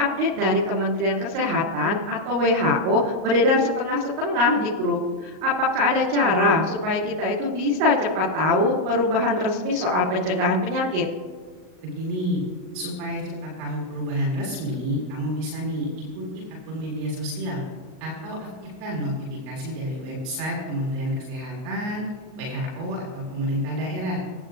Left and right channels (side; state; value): left; late; 38 ms